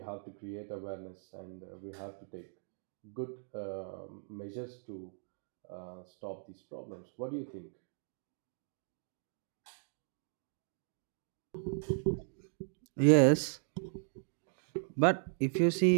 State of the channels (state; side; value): silent; left; digital silence